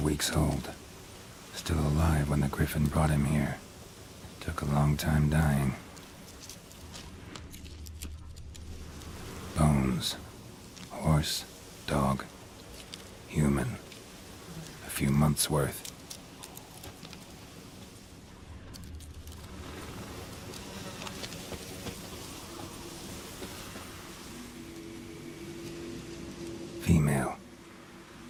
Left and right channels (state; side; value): identical; both; correlation 1.00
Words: weeks old. Still alive when the Griffin brought him here. Took a long time dying. Bones. Horse, dog, human. A few months' worth. Female.